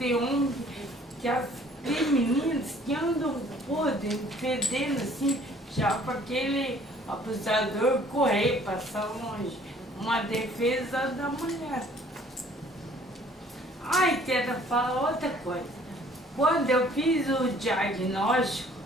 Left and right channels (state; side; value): normal; both; correlation 0.57